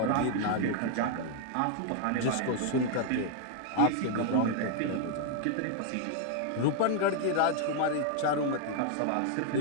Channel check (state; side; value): different; both; correlation 0.00